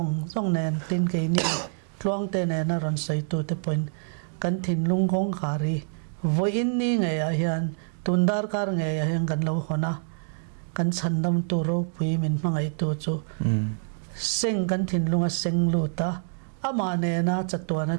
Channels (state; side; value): silent; left; digital silence